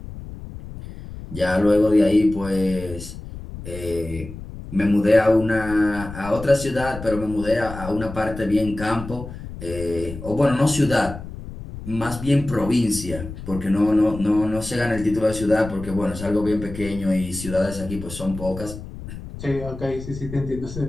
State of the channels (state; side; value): noise; left; rumble, 12 dB below the sound